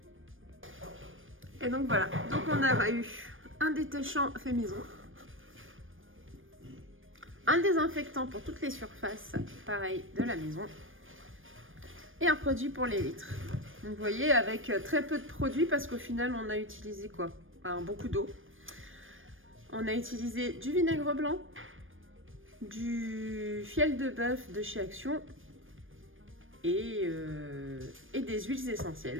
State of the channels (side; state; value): left; late; 0.59 ms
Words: Et donc voilà, donc on a eu un détachant fait maison, un désinfectant pour toutes les surfaces, pareil, de la maison, et un produit pour les vitres. Donc vous voyez, avec très peu de produits, parce qu'au final, on a utilisé quoi? Alors, beaucoup d'eau. On a utilisé du vinaigre blanc, du fiel de bœuf de chez Action, et des huiles